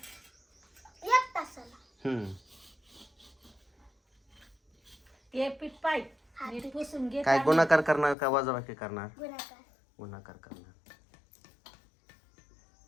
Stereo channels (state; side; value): drops out; right; at 8.2 s